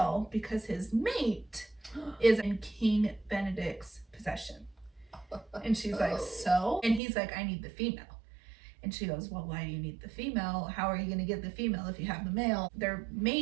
because his mate is in King Benedict's possession. And she's like, so? And he's like, I need the female. And she goes, well, why do you need the female? How are you going to get the female if you have the male? They're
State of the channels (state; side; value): drops out; left; at 7.0 s